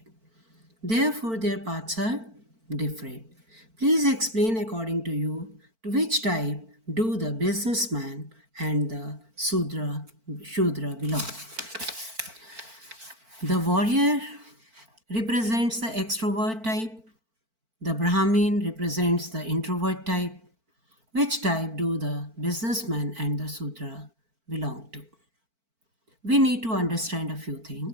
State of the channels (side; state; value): left; late; 4.5 ms